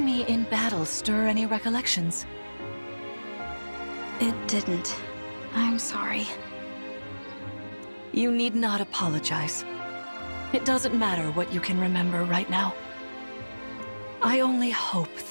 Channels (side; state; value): both; inverted; correlation -1.00